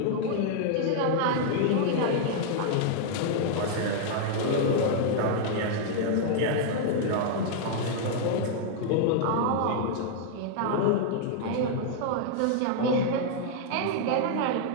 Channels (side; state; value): both; different; correlation -0.01